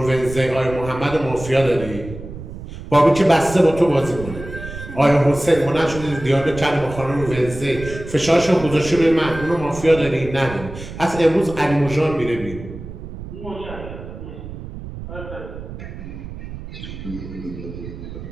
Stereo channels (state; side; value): noise; right; rumble, 11 dB below the sound